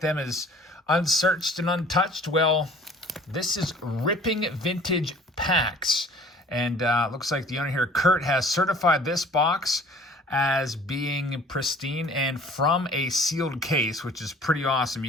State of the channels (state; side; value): normal; both; correlation 0.50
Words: them as unsearched and untouched. Well, this is Ripping Vintage Packs. And looks like the owner here, Kurt, has certified this box as being pristine and from a sealed case, which is pretty awesome.